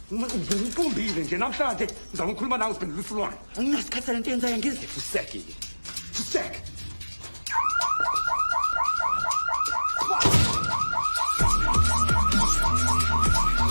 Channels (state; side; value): inverted; both; correlation -1.00